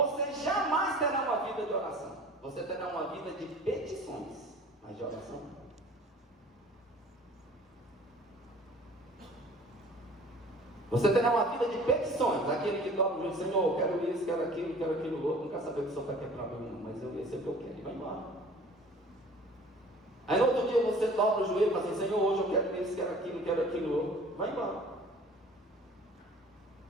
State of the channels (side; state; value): both; normal; correlation 0.46